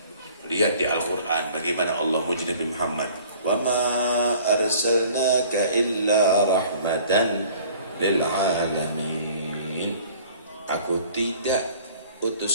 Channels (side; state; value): both; inverted; correlation -0.51